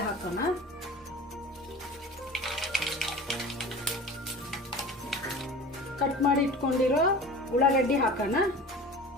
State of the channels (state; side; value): normal; both; correlation 0.37